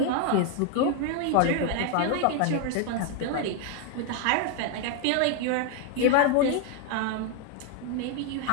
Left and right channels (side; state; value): both; different; correlation 0.01